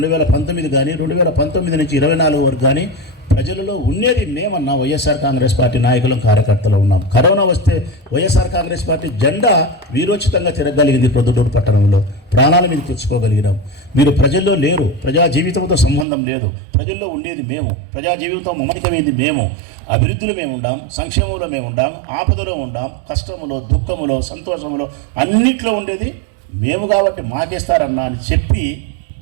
కానీ, 2019 నుంచి 24 వరకు కానీ ప్రజలలో ఉండేది మేమన్నా. వైఎస్ఆర్ కాంగ్రెస్ పార్టీ నాయకులం, కార్యకర్తలు ఉన్నాం. కరోనా వస్తే వైఎస్ఆర్ కాంగ్రెస్ పార్టీ జెండా వీరోచితంగా తిరగలిగింది. ప్రొద్దుటూరు పట్టణంలో ప్రాణాల మీద తెచ్చుకోగలిగినాం. మీరు ప్రజల్లో లేరు. ప్రజా జీవితంతో సంబంధం లేదు. ప్రజల్లో ఉండేది మేము. ప్రజా జీవితం మమేకమైంది మేము. అభివృద్ధిలో మేము ఉండాం, సంక్షేమంలో మేము ఉండాం, ఆపదలో ఉండాం, కష్టములో, దుఃఖములో, సంతోషములో అన్నిట్లో ఉండేది మేము. కాబట్టి మాకేస్తారన్నా అని చెప్పి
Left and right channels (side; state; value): left; drops out; at 16.1 s